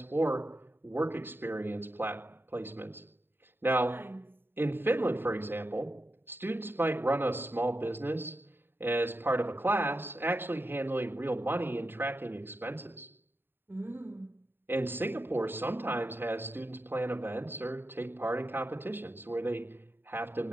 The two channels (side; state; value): left; late; 0.10 ms